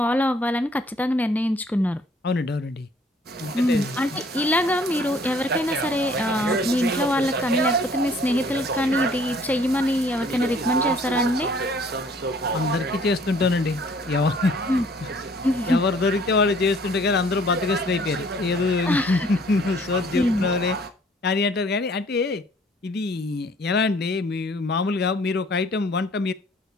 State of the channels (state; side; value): normal; both; correlation 0.58